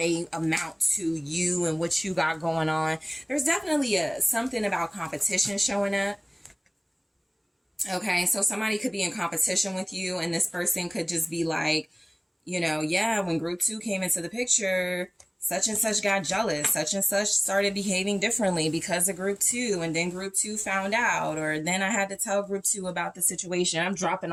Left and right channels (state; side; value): identical; both; correlation 1.00